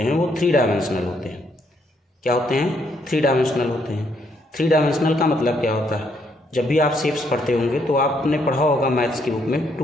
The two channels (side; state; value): both; normal; correlation 0.72